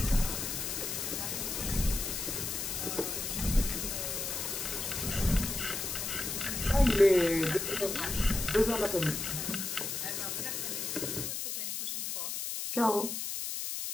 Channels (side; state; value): left; noise; hiss, 3 dB below the sound